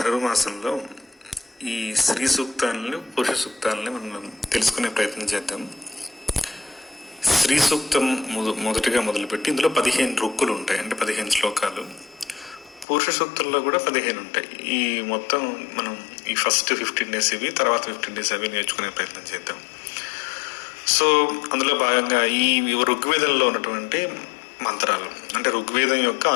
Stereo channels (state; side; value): drops out; right; at 12.9 s